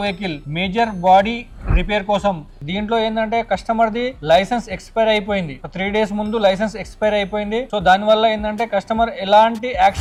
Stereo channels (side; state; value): both; identical; correlation 1.00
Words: vehicle major body repair కోసం. దీంట్లో ఏంటంటే కస్టమర్ ది లైసెన్స్ ఎక్స్పైర్ అయిపోయింది. 3 days ముందు లైసెన్స్ ఎక్స్పైర్ అయిపోయింది. సో దాని వల్ల ఏంటంటే కస్టమర్ ఎలాంటి